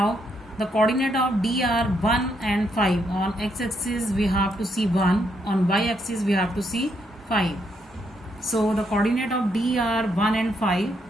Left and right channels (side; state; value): both; normal; correlation 0.76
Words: the coordinate of D are 1 and 5. On x axis we have to see 1, on y axis we have to see 5. So the coordinate of D are 1 and 5.